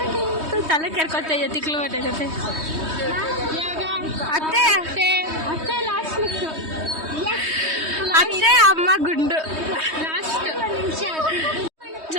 ತಲೆ ಕೆರ್ಕೊತಾ ಇದೆ ತಿಕ್ಲು ಬಟ್ಟೆ ಜೊತೆ ಅತ್ತೆ ಅತ್ತೆ ಅತ್ತೆ ಲಾಸ್ಟ್ ಅತ್ತೆ ಅಮ್ಮ ಗುಂಡು ಲಾಸ್ಟ್ ನಿಮಿಷ.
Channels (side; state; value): left; late; 3.2 ms